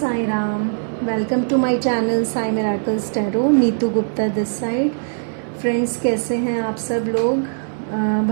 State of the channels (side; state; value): left; silent; digital silence